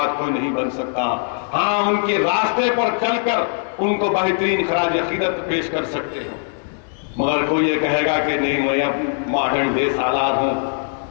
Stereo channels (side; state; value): right; silent; 57 dB below the other